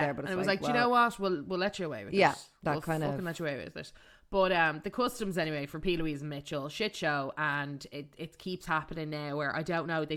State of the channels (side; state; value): both; identical; correlation 1.00